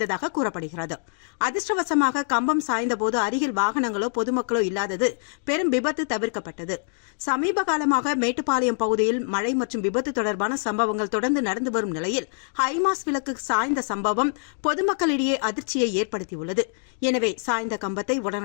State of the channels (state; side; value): silent; right; digital silence